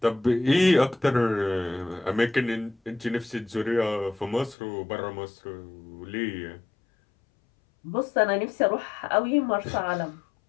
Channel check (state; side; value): drops out; right; at 4.5 s